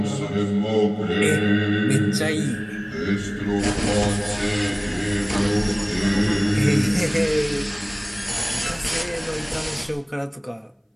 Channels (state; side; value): identical; both; correlation 1.00